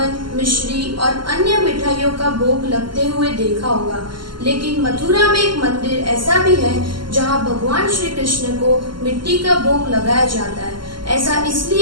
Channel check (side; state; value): left; late; 0.72 ms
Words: मिश्री और अन्य मिठाइयों का भोग लगते हुए देखा होगा, लेकिन मथुरा में एक मंदिर ऐसा भी है जहां भगवान श्री कृष्ण को मिट्टी का भोग लगाया जाता है। ऐसा